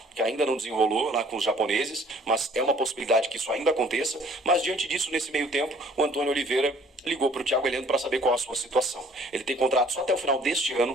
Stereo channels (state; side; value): normal; both; correlation 0.56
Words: que ainda não desenrolou lá com os japoneses, mas é uma possibilidade que isso ainda aconteça. Mas diante disso, nesse meio tempo, o Antônio Oliveira ligou para o Thiago Heleno para saber qual a sua situação. Ele tem contrato só até o final deste